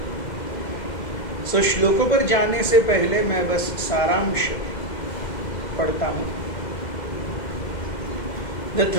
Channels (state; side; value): late; right; 2.0 ms